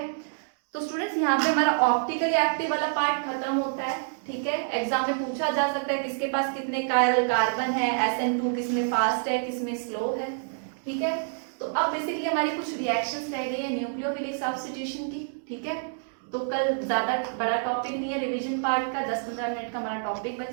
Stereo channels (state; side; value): silent; left; digital silence